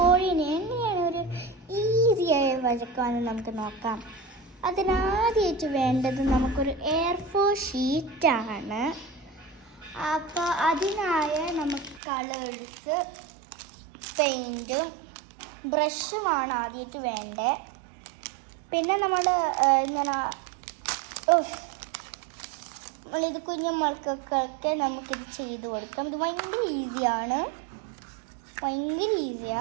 എങ്ങനെയാണ് ഒരു ഈസിയായി വരയ്ക്കാമെന്ന് നമുക്ക് നോക്കാം. അതിനാദ്യമായിട്ട് വേണ്ടത് നമുക്കൊരു A4 ഷീറ്റാണ്. അപ്പോൾ അതിനായ നമുക്ക് കളേഴ്സ്, പെയിൻറ്റും ബ്രഷുമാണ് ആദ്യമായിട്ട് വേണ്ടത്. പിന്നെ നമ്മളിത് കുഞ്ഞുമക്കൾക്കൊക്കെ നമുക്കിത് ചെയ്ത് കൊടുക്കാം. ഇത് ഭയങ്കര ഈസിയാണ്.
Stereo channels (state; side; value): drops out; left; at 12.0 s